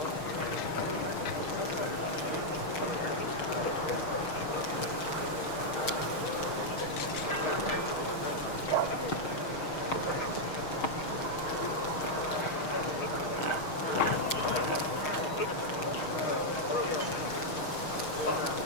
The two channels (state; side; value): late; right; 6.4 ms